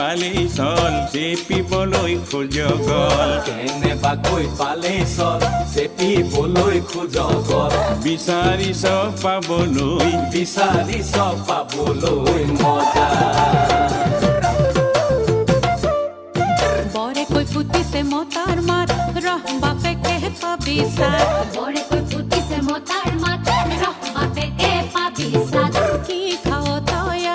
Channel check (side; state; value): both; identical; correlation 1.00